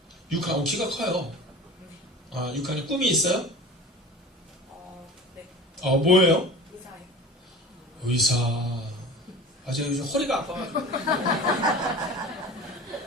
6학년. 키가 커요. 6학년. 꿈이 있어요? 네. 뭐예요? 의사요. 의사. 제가 요즘 허리가 아파가지고.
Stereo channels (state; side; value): normal; both; correlation 0.36